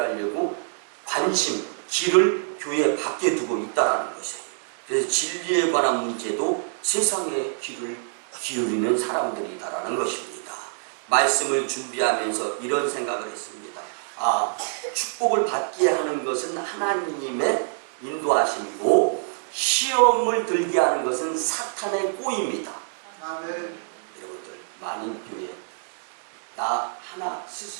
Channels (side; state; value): left; silent; digital silence